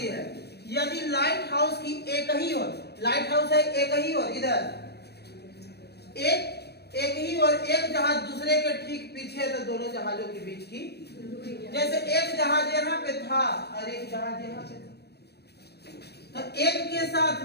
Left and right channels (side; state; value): right; late; 0.48 ms